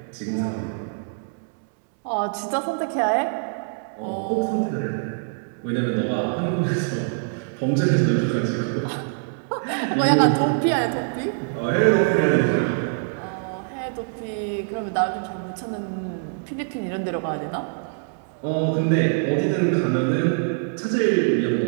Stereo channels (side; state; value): left; silent; digital silence